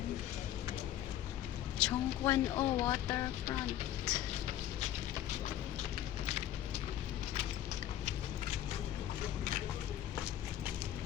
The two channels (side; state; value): right; quieter; 12.1 dB